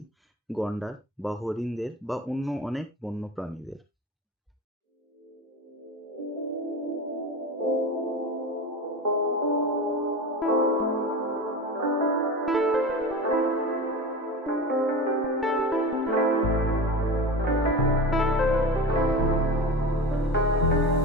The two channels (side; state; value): both; normal; correlation 0.29